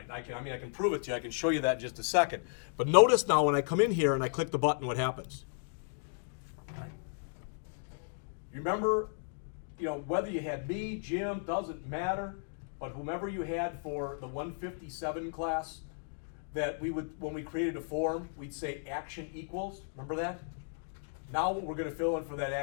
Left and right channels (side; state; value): right; silent; digital silence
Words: I can prove it to you. I can show you that in just a second. But notice now when I come in here and I click the button, what happens? All right. Remember, whether you had me, Jim, doesn't matter. But whomever you had for the 157 class, that we would, when we created a form, we'd say action equals. Remember that? Now what we're going to fill in for that